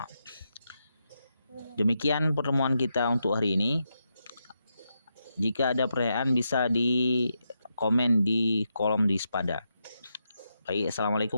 Demikian pertemuan kita untuk hari ini. Jika ada pertanyaan bisa di komen di kolom di sepada. Baik,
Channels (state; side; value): inverted; both; correlation -0.84